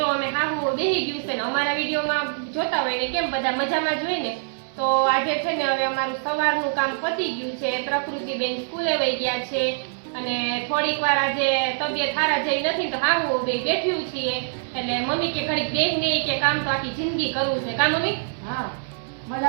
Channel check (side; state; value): left; silent; 62 dB below the other